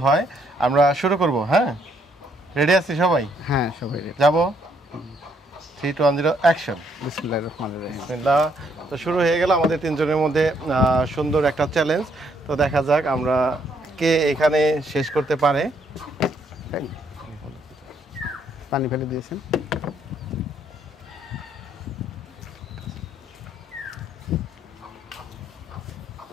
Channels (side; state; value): both; normal; correlation 0.70